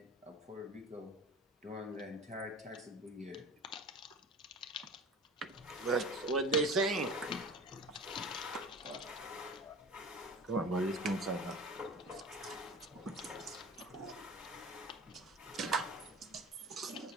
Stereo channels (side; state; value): both; normal; correlation 0.38